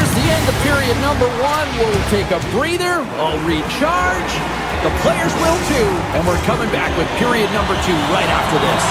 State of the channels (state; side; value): identical; both; correlation 1.00